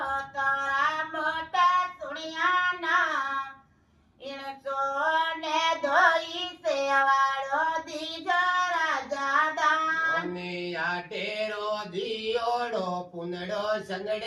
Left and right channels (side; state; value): both; identical; correlation 1.00